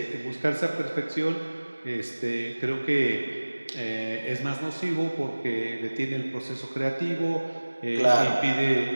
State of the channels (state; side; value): inverted; both; correlation -1.00